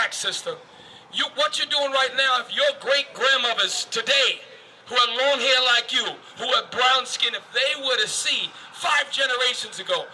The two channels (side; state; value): both; identical; correlation 1.00